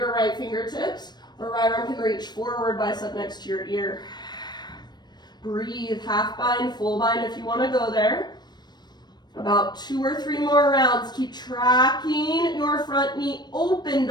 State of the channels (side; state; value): right; late; 0.21 ms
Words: right fingertips, or right arm can reach forward, bicep next to your ear. Breathe, half bind, full bind if you want to go there. About 2 or 3 more rounds. Keep tracking your front knee open.